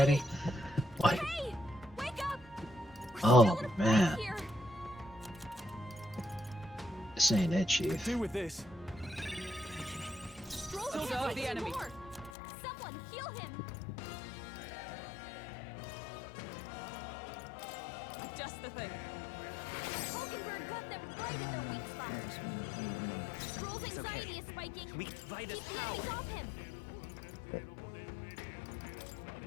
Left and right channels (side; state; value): right; drops out; at 12.3 s